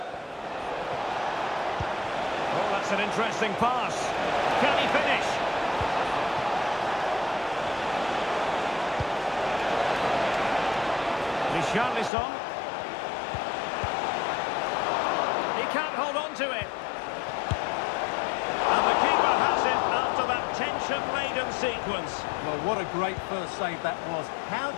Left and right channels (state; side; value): drops out; right; at 12.1 s